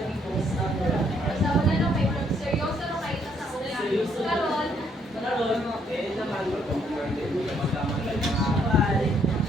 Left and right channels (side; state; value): both; normal; correlation 0.70